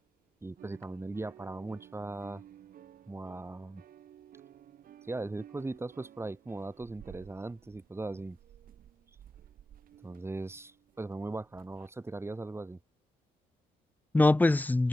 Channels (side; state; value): both; normal; correlation 0.93